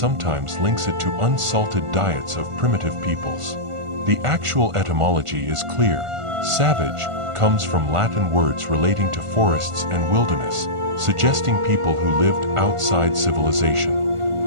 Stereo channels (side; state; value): left; late; 1.5 ms